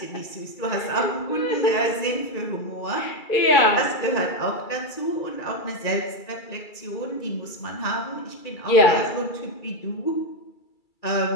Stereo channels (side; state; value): right; late; 2.3 ms